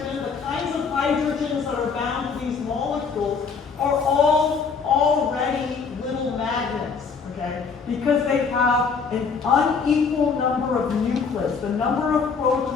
the kinds of hydrogens that are bound to these molecules, are all already little magnets, okay? Because they have an unequal number of nuclids. The number of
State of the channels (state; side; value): quieter; right; 5.4 dB